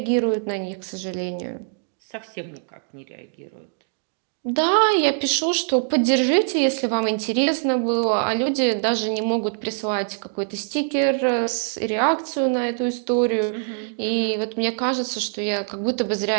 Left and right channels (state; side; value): silent; left; digital silence